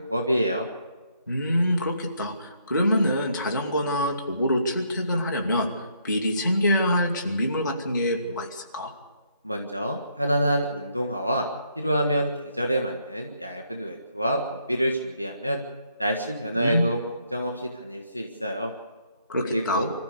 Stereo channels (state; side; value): inverted; both; correlation -0.71